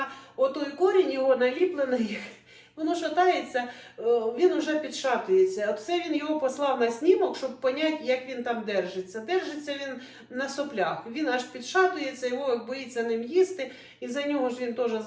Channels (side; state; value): both; identical; correlation 1.00